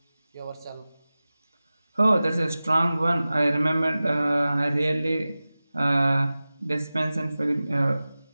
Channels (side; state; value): both; inverted; correlation -0.96